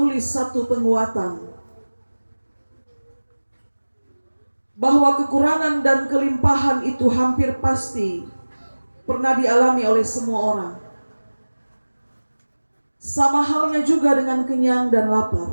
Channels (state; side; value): inverted; both; correlation -1.00